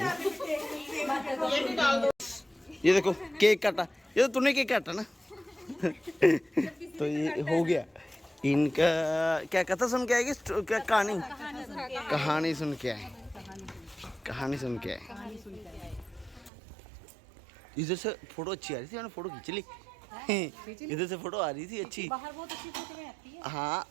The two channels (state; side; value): drops out; left; at 16.5 s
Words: ये भी डाल दो ये देखो केक काटा ये तो तूने केक काटा ना तो ये हो गया इनका क्या कथा सुन के आएगी क्या कहानी सुन के आए कहानी सुन के आए इधर से फोटो अच्छी आ रही थी मैंने फोटो खींच ली इधर से फोटो आ रही थी अच्छी बाहर बहुत अच्छी फोटो में आती है हाँ